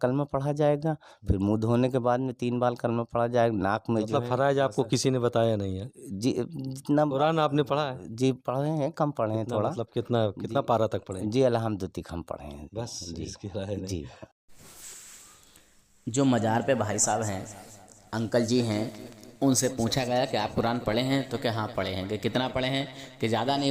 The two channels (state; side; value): identical; both; correlation 1.00